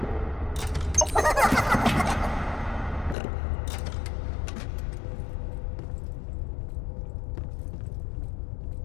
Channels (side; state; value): right; drops out; at 3.2 s